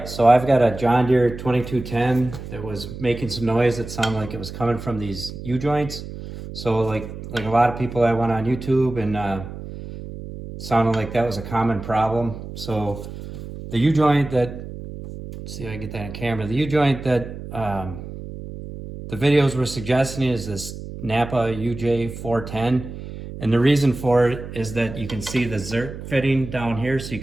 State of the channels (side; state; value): right; noise; hum, 11 dB below the sound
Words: so I've got a John Deere 2210 that was making some noise that sounded like it was coming from these U-joints. So like a lot of people, I went on YouTube and sounded like that was a common problem. So the U-joint that, let's see if I can get that on camera, the U-joint that the videos were suggesting is this Napa UJ410. And the reason for it is that you can see the Zerk fitting down here, so you